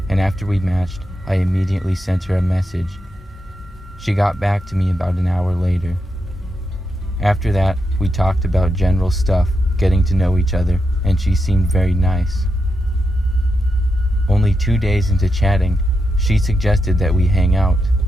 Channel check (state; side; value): normal; both; correlation 0.85